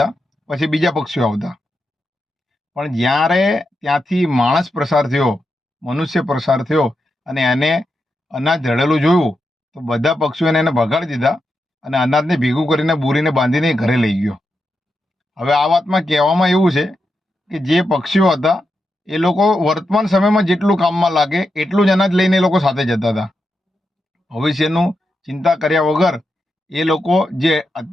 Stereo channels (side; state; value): both; normal; correlation 0.86